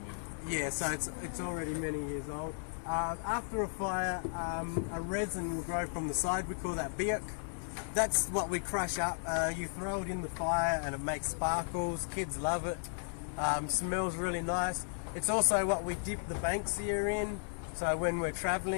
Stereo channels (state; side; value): silent; right; digital silence